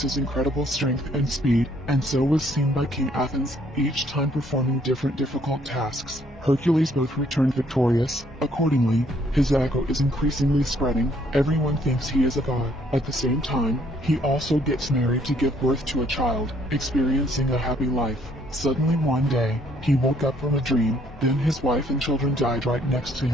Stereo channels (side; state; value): both; normal; correlation 0.65